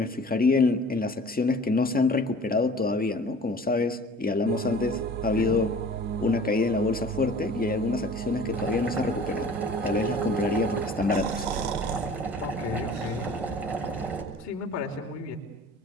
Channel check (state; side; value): normal; both; correlation 0.46